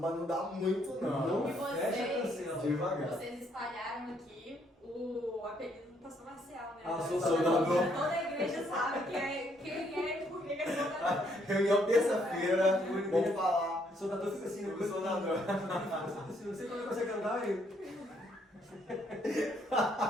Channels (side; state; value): both; normal; correlation 0.70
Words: não dá muito não. E Fecha, cancela. Devagar. vocês espalharam aqui o apelido do pastor Marcial, né? soldador. Toda a igreja sabe quem é e por que é soldador. Reunião terça-feira, vamos falar. O soldador fica assim, O soldador. Não sei quando consegue andar aí.